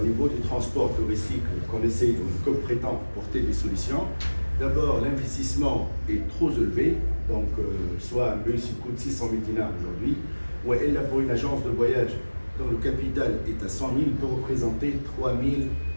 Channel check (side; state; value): both; inverted; correlation -1.00